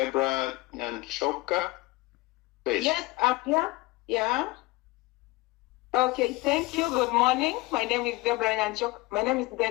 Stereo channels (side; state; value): right; quieter; 21.3 dB